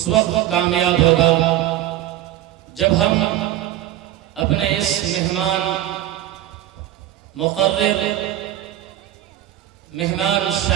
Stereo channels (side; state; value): left; quieter; 13.3 dB